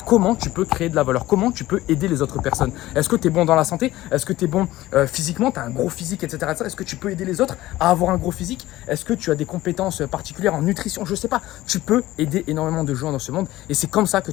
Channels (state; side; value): quieter; right; 16.5 dB